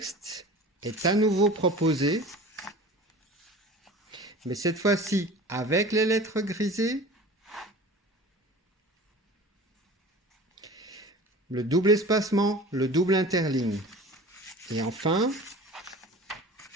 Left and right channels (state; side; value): normal; both; correlation 0.40